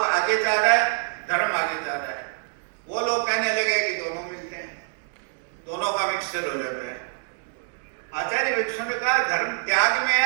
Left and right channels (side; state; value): left; silent; digital silence